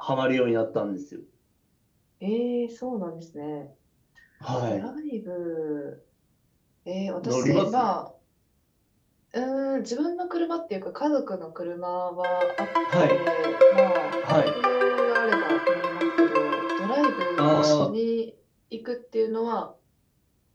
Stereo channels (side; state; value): both; identical; correlation 1.00